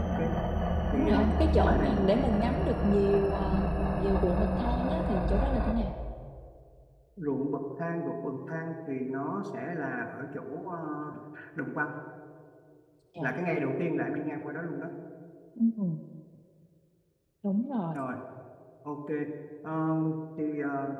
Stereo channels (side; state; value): both; identical; correlation 1.00